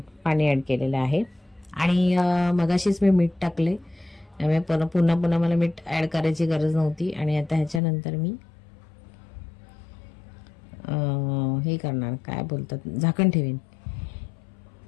पाणी ॲड केलेलं आहे. आणि मगाशीच मी मीठ टाकले, त्यामुळे पुन्हा पुन्हा मला मीठ ॲड करायची गरज नव्हती. आणि आता ह्याच्यानंतर मी हे करणार, काय बोलतात, झाकण ठेवीन.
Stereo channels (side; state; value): right; drops out; at 7.8 s